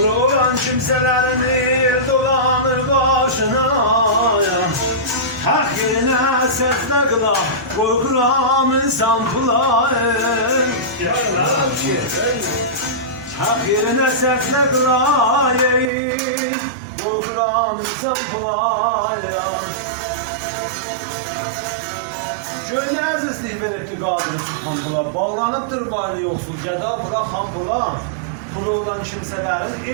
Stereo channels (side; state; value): left; drops out; at 15.9 s